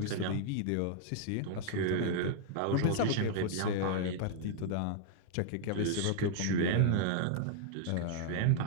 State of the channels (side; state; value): both; different; correlation -0.01